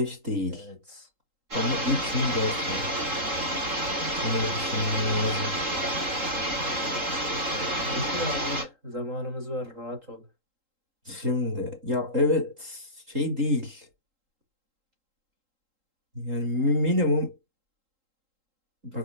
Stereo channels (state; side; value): late; left; 3.8 ms